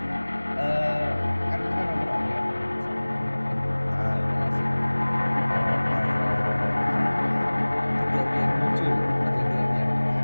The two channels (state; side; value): inverted; both; correlation -1.00